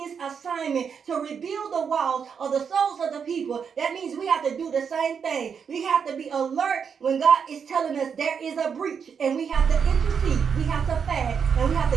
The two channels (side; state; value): left; quieter; 6.7 dB